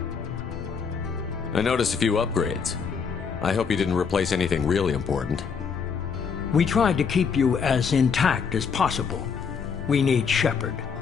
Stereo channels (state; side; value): quieter; right; 6.1 dB